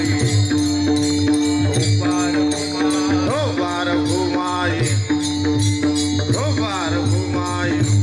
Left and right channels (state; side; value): identical; both; correlation 1.00